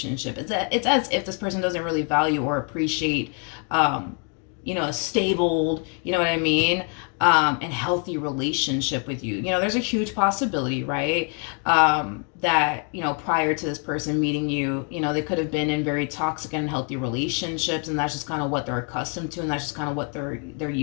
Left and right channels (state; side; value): quieter; right; 39.8 dB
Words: It's as if this person doesn't really value or appreciate, you know, a stable, you know what I mean, and healthy relationship with you. You know, there's a huge possibility, right? That, you know, prior to this person meeting you, you know, they could have been in very toxic and unhealthy relationships, and that's just kind of what they're accustomed to, and that's just kind of what they're